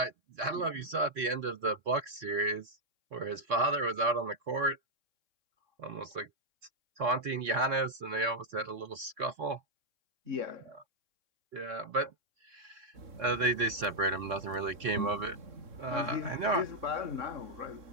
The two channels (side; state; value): left; late; 3.6 ms